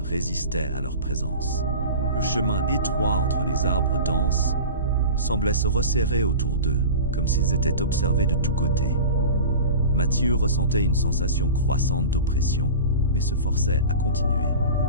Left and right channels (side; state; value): both; inverted; correlation -0.34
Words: à leur présence. Le chemin étroit entre les arbres denses semblait se resserrer autour d'eux, comme s'ils étaient observés de tous côtés. Mathieu ressentait une sensation croissante d'oppression, mais se forçait à continuer.